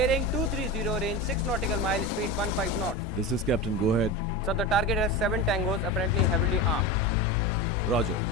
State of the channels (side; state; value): both; normal; correlation 0.24